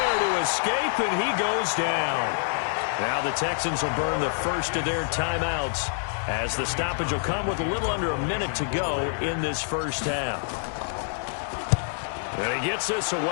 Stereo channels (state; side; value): silent; right; 57 dB below the other